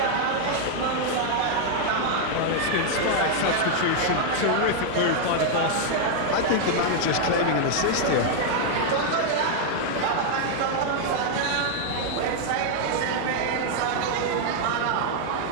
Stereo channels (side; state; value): both; different; correlation 0.00